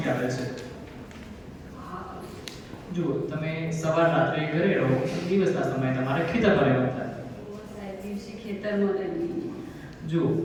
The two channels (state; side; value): identical; both; correlation 1.00